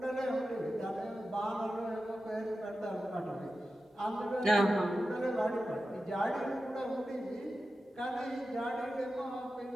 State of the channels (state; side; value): normal; both; correlation 0.92